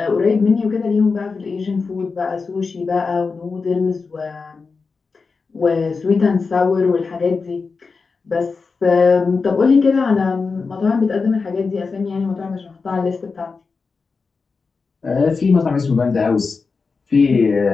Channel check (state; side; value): quieter; right; 4.6 dB